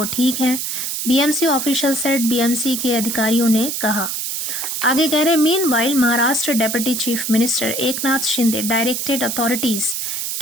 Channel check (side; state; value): right; noise; hiss, 3 dB below the sound